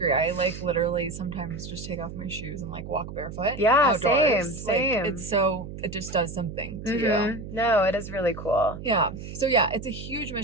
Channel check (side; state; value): right; noise; hum, 10 dB below the sound